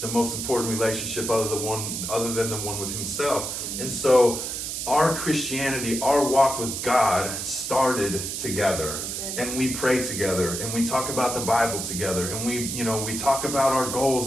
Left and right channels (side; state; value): right; noise; hiss, 4 dB below the sound